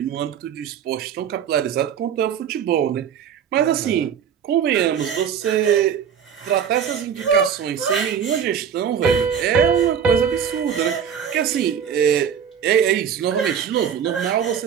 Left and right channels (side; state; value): left; quieter; 7.9 dB